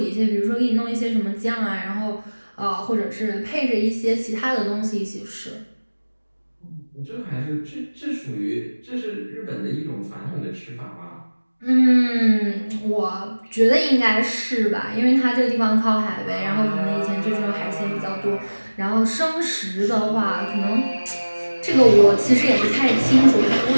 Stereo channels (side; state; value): both; inverted; correlation -1.00